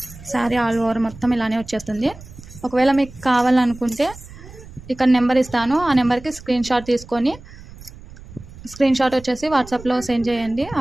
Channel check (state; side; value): noise; right; rumble, 18 dB below the sound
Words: శారీ ఆల్ ఓవర్ మొత్తం ఇలానే వచ్చేస్తుంది. ఒకవేళ మీకు కావాలనుకుంటే ఇక్కడ నెంబర్ ఇస్తాను, ఆ నెంబర్కి స్క్రీన్ షాట్ వచ్చేసి వాట్సాప్లో సెండ్ చేయండి.